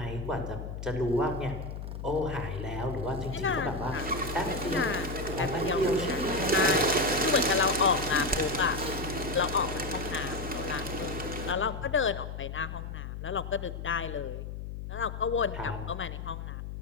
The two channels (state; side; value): noise; left; hum, 7 dB below the sound